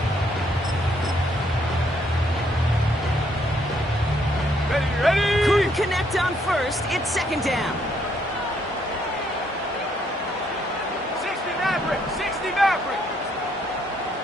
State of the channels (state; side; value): normal; both; correlation 0.70